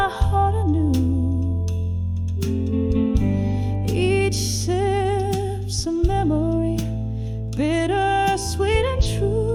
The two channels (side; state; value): both; identical; correlation 1.00